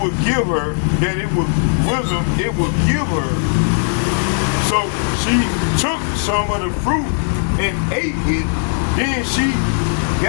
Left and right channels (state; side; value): silent; right; digital silence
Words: would give her, that it was wisdom, it would give her. So she took some of the fruit and ate it. Then she